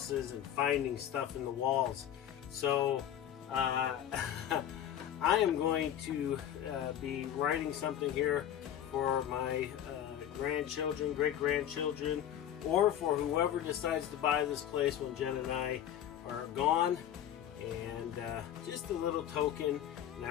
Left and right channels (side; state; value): right; quieter; 10.5 dB